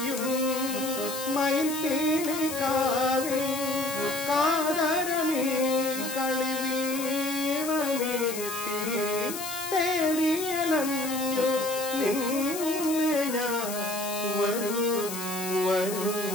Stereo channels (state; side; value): noise; left; hiss, 7 dB below the sound